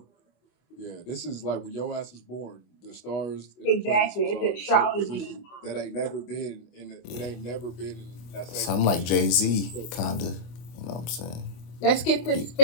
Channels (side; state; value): right; late; 25 ms